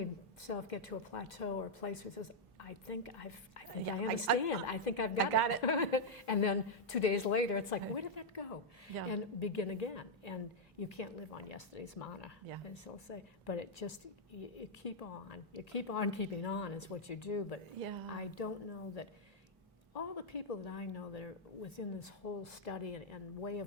get to a plateau or a place where he says, I think I understand. I think I've got it. And then 2 days later, it's like, where did that go? Yeah. And begin again. And you can't live on yesterday's manna, as they'll say. But it just, you keep on. You keep on keeping on is what you do. But I don't know that all the people that I know that are within this whole study and way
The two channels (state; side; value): normal; both; correlation -0.03